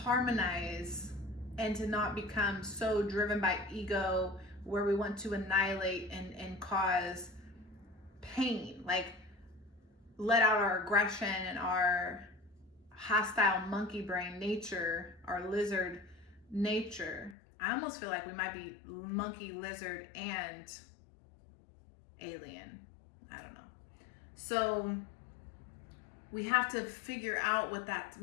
and to not become so driven by ego where we want to annihilate and cause pain, like let out our aggression and our hostile monkey brain nature, our lizard nature. I almost feel like we might be monkey, lizard, and alien. I don't know. So we have to figure out what that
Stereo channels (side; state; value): right; drops out; at 17.4 s